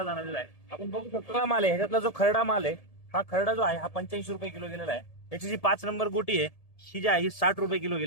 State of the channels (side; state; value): right; late; 1.7 ms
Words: जाणवलेला आहे. आपण बघू शकतो हा माल आहे, ह्याच्यातला जो खरडा माल आहे, हा खरडा जो आहे हा 85 रुपये किलो गेलेला आहे. त्याची जी 5 नंबर गोटी आहे ही जी आहे ही 60 रुपये किलो